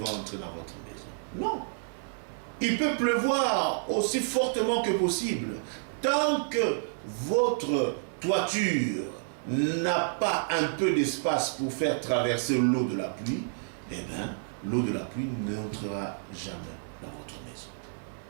entrer dans votre maison? Non. Il peut pleuvoir aussi fortement que possible. Tant que votre toiture n'a pas un peu d'espace pour faire traverser l'eau de la pluie, eh bien, l'eau de la pluie n'entrera jamais dans votre maison.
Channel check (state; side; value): silent; left; digital silence